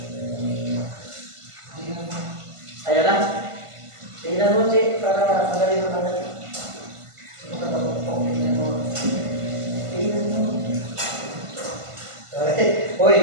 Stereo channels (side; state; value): left; late; 1.5 ms